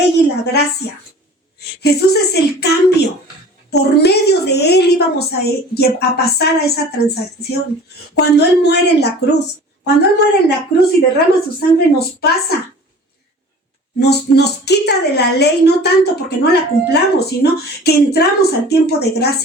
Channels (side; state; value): both; normal; correlation 0.43